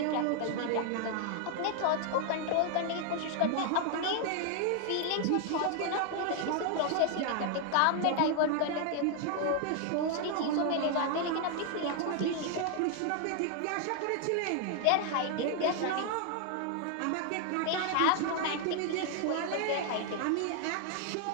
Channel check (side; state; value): both; different; correlation 0.00